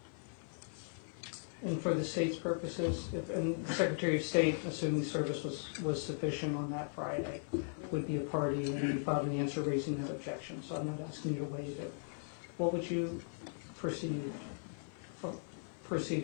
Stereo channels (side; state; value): right; silent; 52 dB below the other